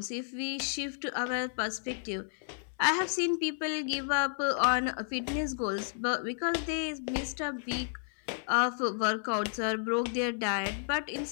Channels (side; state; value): right; silent; 57 dB below the other